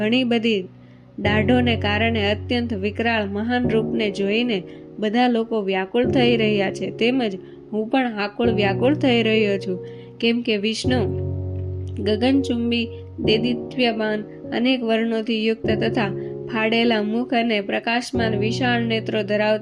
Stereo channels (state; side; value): identical; both; correlation 1.00